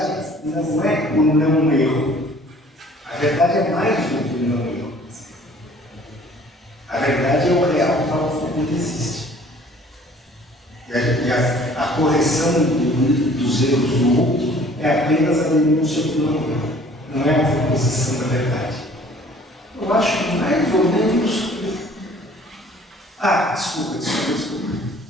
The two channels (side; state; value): both; normal; correlation 0.53